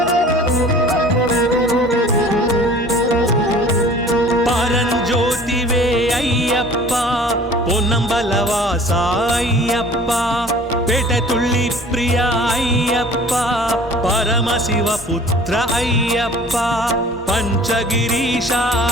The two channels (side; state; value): both; normal; correlation 0.47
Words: పరంజ్యోతివే అయ్యప్ప పొన్నంబలవాస అయ్యప్ప పెటతుళ్ళి ప్రియ అయ్యప్ప పరమశివ పుత్ర అయ్యప్ప పంచగిరీశ